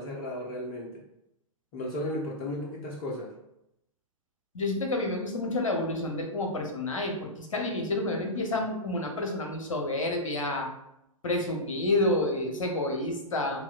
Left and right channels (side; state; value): both; normal; correlation -0.14